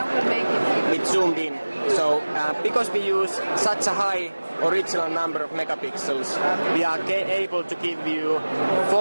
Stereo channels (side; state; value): both; inverted; correlation -1.00